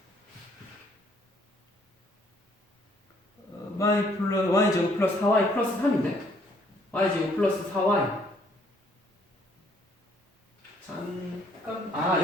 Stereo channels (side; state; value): both; normal; correlation 0.65